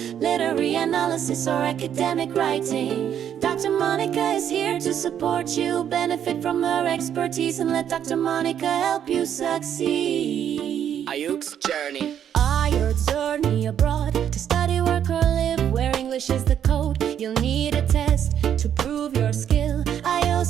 literary analysis, or academic writing, Dr. Monica is here to support you. Benefit from her expertise and let Dr. Monica help you succeed. Ayuk's journey. Your journey abroad to study, work, or live where English is the code. You'll need a test to prove your skill.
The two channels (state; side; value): quieter; left; 9.4 dB